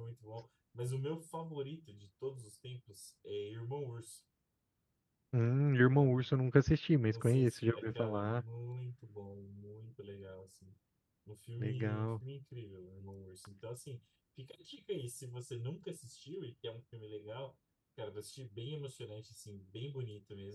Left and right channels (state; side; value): identical; both; correlation 1.00